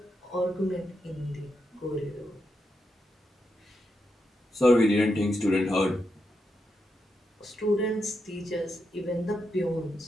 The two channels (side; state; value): both; normal; correlation 0.85